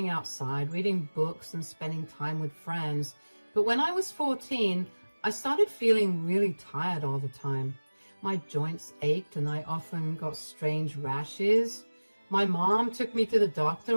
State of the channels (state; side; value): inverted; both; correlation -1.00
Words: outside, reading books, and spending time with friends. But when I was 14, I started feeling really tired all the time. My joints ached and I often got strange rashes. My mom took me to the